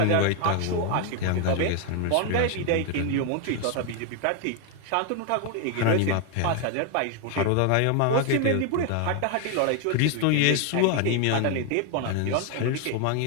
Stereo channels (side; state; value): both; different; correlation 0.00